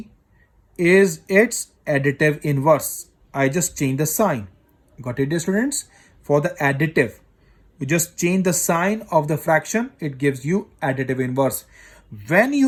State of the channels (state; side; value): identical; both; correlation 1.00